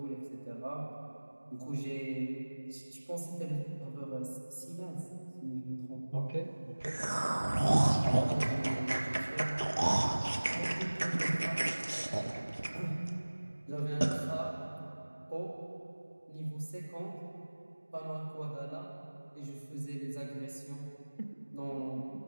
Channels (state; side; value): inverted; both; correlation -1.00